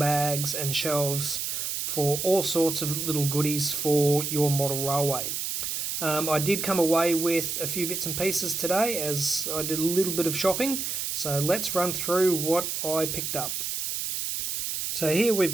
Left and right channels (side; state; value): right; noise; hiss, 2 dB below the sound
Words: and shelves for all sorts of little goodies for your model railway. I did come away with a few bits and pieces today as I did a little bit of shopping, so let's run through what I picked up. So here we've